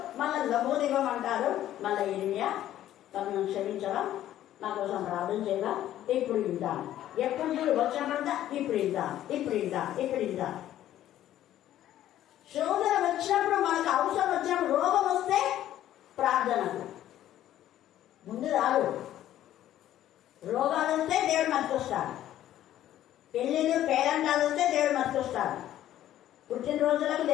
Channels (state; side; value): quieter; right; 12.6 dB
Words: మళ్ళీ లబోదివ్వమంటారు. మళ్ళీ యిర్మీయా తనను క్షమించవా, నా కోసం ప్రార్థన చేయగా, ఇప్పుడు ఇంటాను, ఎప్పుడు చూడు వచ్చినప్పుడంతా ఇప్పుడు ఇంటా. శోధన వచ్చినప్పుడు, మనకు అవసరం వచ్చినప్పుడు, రోగం వస్తే ప్రార్థనకు ముందు రాదు. రోగాలు వస్తే దేవుడు మర్చిస్తాడు, పెళ్ళిళ్ళు పేరంటాలు వస్తే దేవుడు మర్చిస్తాడు, పుట్టినరోజులకు